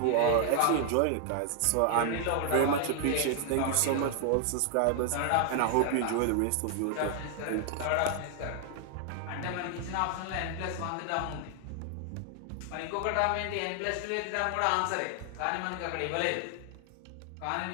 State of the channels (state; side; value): different; both; correlation 0.00